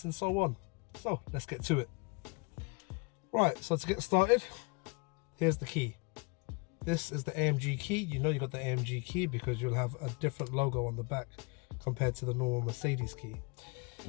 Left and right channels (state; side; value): quieter; right; 31.1 dB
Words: and so on. So let's get to it. Right, so to get started, here's the key. This is the AMG key. You know you got the AMG key because you'll have a different logo on the back compared to the normal Mercedes key.